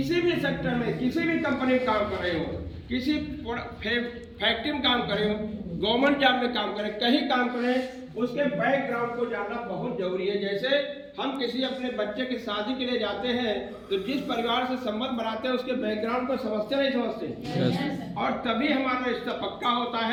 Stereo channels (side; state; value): both; identical; correlation 1.00